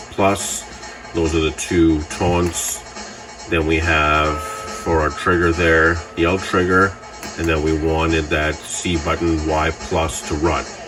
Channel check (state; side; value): identical; both; correlation 1.00